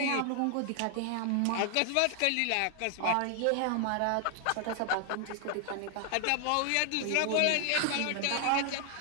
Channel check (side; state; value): both; different; correlation 0.00